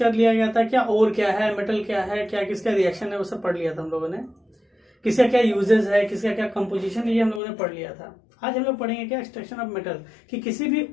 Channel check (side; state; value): right; drops out; at 7.4 s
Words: लिया गया था क्या ओर क्या है, मेटल क्या है, क्या किसका रिएक्शन है, वो सब पढ़ लिया था हम लोगों ने। किसका क्या यूजेस है, किसका क्या कंपोजिशन, ये हम लोगों ने पढ़ लिया था। आज हम लोग पढ़ेंगे क्या एक्सट्रैक्शन ऑफ मेटल, कि किसी भी